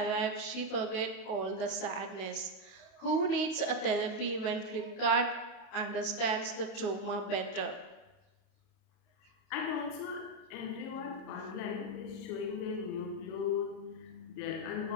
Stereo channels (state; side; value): late; right; 32 ms